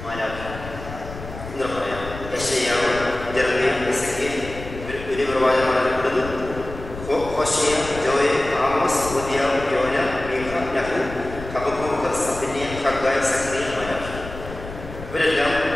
എന്ന് പറയാം. യെശയ്യാവ്, ജെറമ്യ, എസെക്കിയേൽ വലിയ പ്രവാചകന്മാരപ്പെടുന്നു. ഹോശയ, ജോയൽ, ആമോസ്, ഒബദ്യാവ്, യോന, മീഖ, നഹൂ, ഹബക്കൂക്ക്, സഫന്യ, ഹഗ്ഗായി, സഖറിയ, മാലാഖി. ഇവരെല്ലാം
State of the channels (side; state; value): left; noise; rumble, 12 dB below the sound